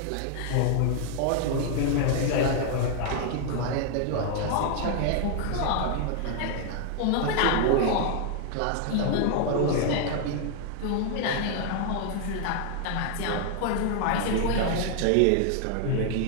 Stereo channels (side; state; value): both; different; correlation 0.00